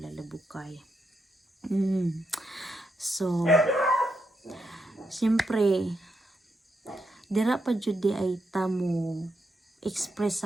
labukay. So, siyempre, dira pa jud di ay tamo express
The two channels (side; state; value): both; normal; correlation 0.82